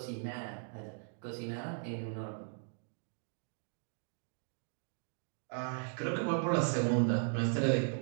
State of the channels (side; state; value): left; silent; digital silence